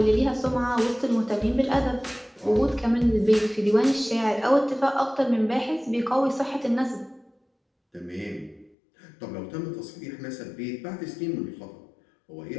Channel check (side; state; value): right; drops out; at 8.8 s